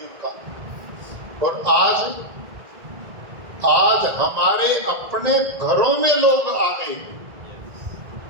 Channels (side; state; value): left; late; 1.9 ms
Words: का। और आज हमारे अपने घरों में लोग आ गए